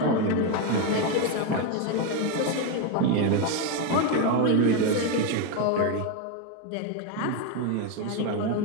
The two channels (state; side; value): different; both; correlation 0.03